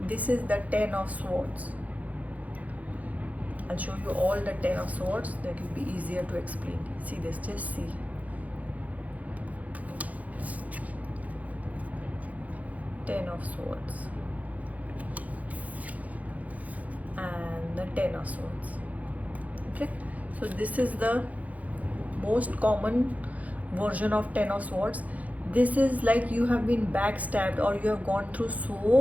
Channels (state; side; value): late; left; 0.073 ms